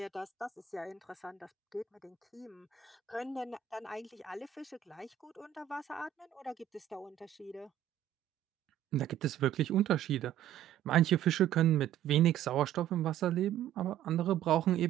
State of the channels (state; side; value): quieter; left; 11.0 dB